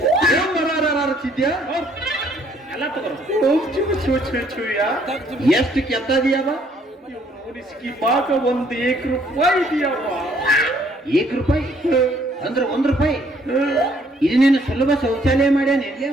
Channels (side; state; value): both; normal; correlation 0.64